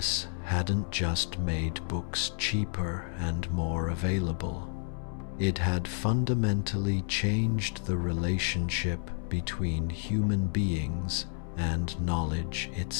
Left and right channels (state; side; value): silent; right; 57 dB below the other